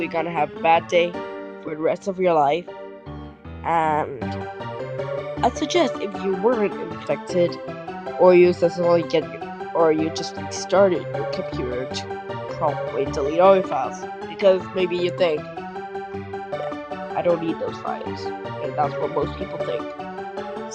gonna have a bad day for the rest of your life. And I suggest if you weren't infected, or you successfully or you just restarted your computer, to probably delete all your files, because maybe you think, yeah, I don't need those files, and that's what most people think.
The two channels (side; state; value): both; identical; correlation 1.00